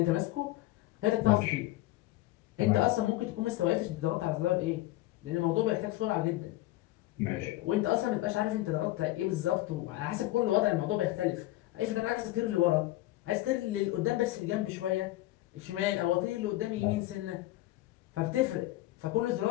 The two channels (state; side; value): quieter; right; 17.1 dB